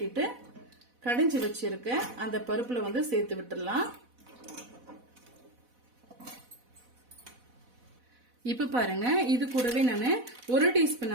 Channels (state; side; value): late; left; 4.1 ms